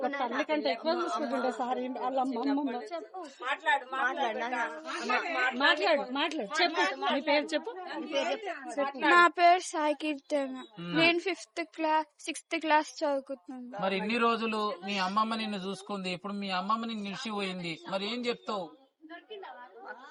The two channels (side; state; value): both; identical; correlation 1.00